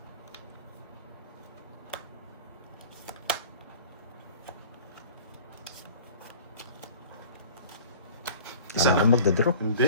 Isa na. Magda-draw.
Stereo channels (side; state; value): both; inverted; correlation -0.45